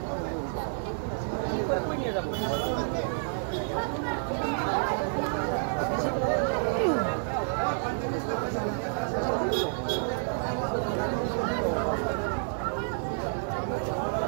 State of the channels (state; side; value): silent; left; digital silence